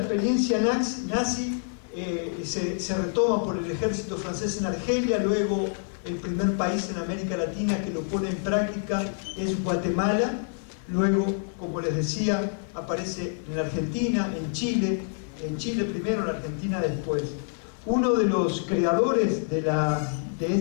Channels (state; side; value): silent; right; 57 dB below the other